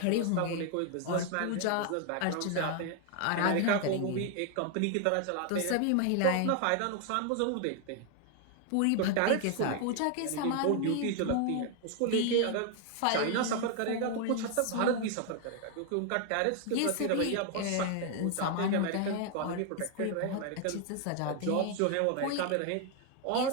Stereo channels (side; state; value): both; different; correlation 0.00